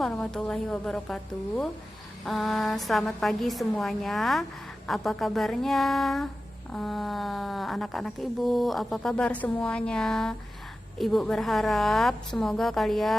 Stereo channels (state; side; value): normal; both; correlation 0.94